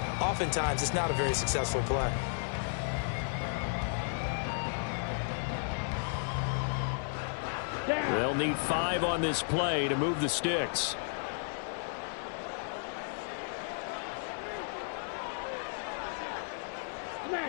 oftentimes it's not a very successful play. They'll need 5 on this play to move the sticks.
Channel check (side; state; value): right; silent; 55 dB below the other